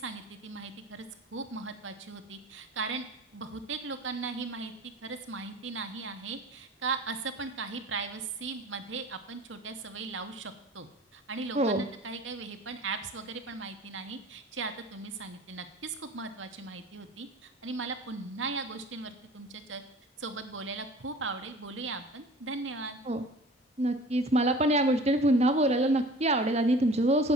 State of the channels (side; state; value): both; normal; correlation 0.44